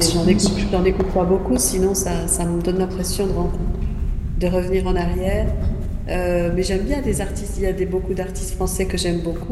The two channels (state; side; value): identical; both; correlation 1.00